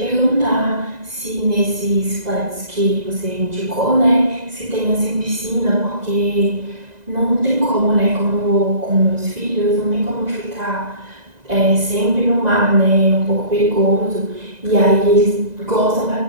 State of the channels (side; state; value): left; late; 2.0 ms